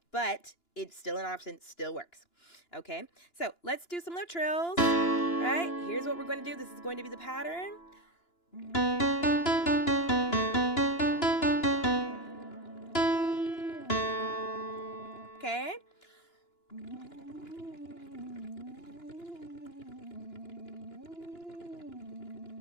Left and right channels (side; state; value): right; late; 2.9 ms